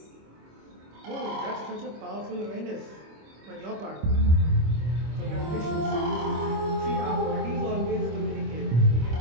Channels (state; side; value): late; left; 25 ms